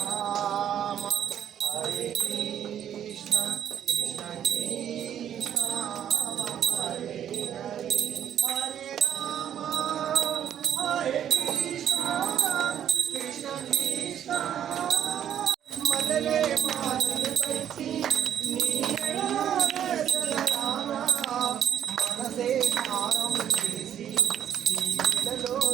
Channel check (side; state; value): left; quieter; 9.9 dB